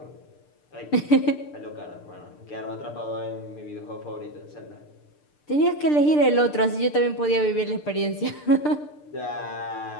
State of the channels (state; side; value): late; right; 6.7 ms